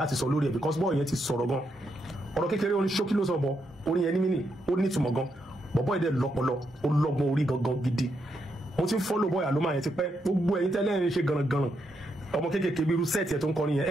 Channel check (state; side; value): normal; both; correlation 0.80